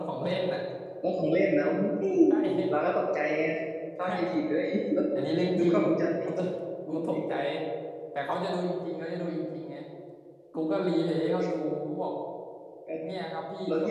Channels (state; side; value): identical; both; correlation 1.00